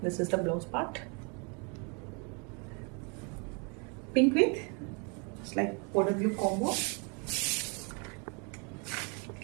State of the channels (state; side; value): quieter; left; 34.9 dB